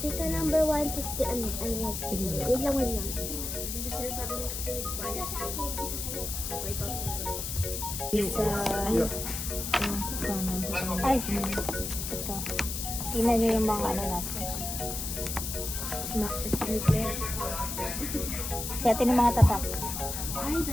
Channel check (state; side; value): noise; left; hiss, 4 dB below the sound